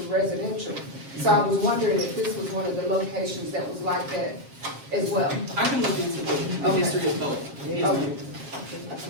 residential. So I was wondering if this was one of the locations that was like that as well. I can look into the history of both. Okay.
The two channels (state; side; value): late; left; 7.4 ms